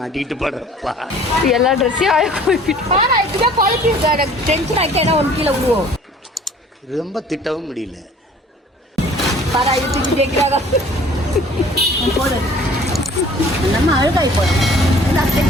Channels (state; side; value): normal; both; correlation 0.51